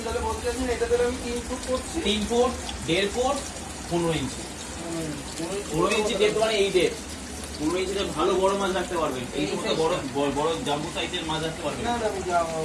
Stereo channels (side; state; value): both; identical; correlation 1.00